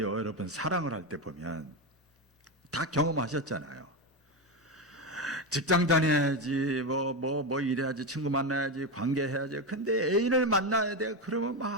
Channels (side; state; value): both; normal; correlation 0.13